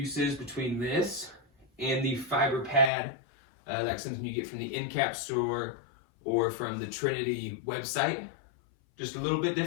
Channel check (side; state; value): right; drops out; at 2.9 s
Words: between this and the fiber pad, like something you get from the Endcap store or from the Trinity website. Just a little bit